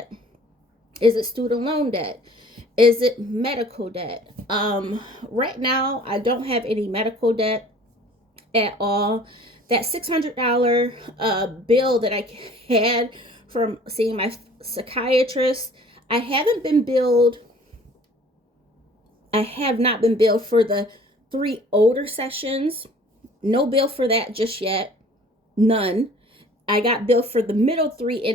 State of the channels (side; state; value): both; normal; correlation 0.50